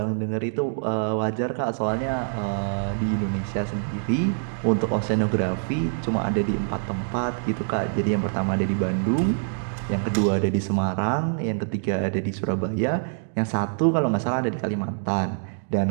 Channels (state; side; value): silent; left; digital silence